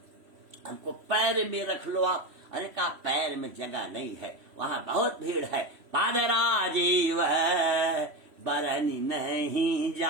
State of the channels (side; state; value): left; late; 3.1 ms